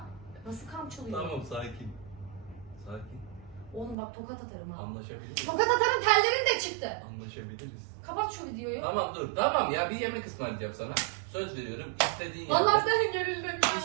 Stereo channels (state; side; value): drops out; left; at 4.0 s